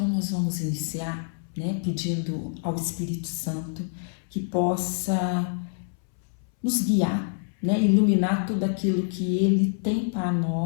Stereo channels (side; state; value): right; silent; 61 dB below the other